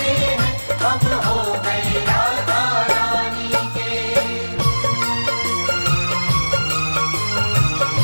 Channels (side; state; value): both; inverted; correlation -1.00